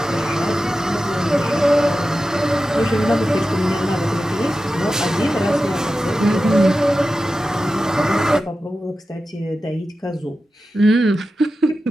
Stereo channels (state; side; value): normal; both; correlation 0.93